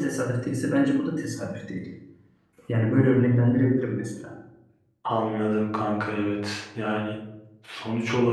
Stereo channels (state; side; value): identical; both; correlation 1.00